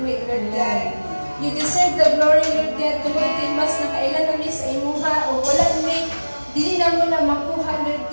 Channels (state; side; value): inverted; both; correlation -1.00